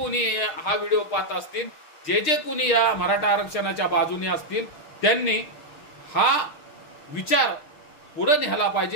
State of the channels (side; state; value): right; late; 6.5 ms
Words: हा व्हिडिओ पाहत असतील, जे कोणी या मराठा आरक्षणाच्या बाजूने असतील, त्यांनी हा विचार पुढे न्यायला